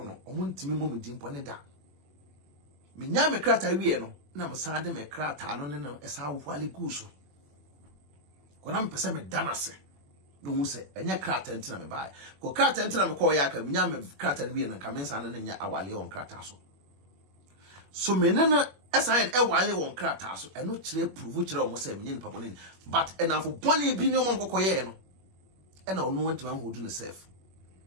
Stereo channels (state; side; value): late; left; 21 ms